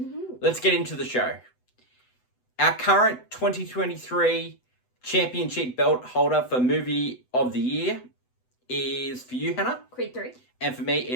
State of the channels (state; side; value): late; right; 8.0 ms